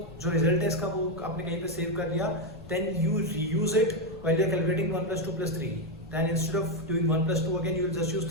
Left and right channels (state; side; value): noise; left; rumble, 19 dB below the sound